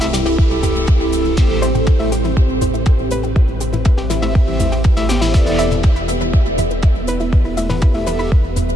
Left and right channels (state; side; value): normal; both; correlation 0.79